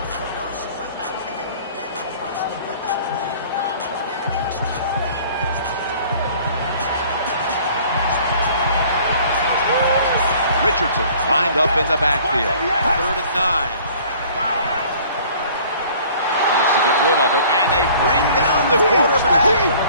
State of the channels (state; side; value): inverted; both; correlation -0.51